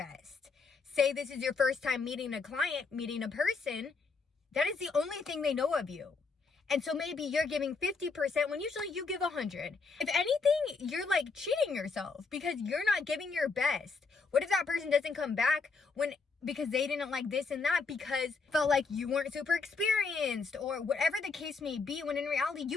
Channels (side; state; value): right; quieter; 4.6 dB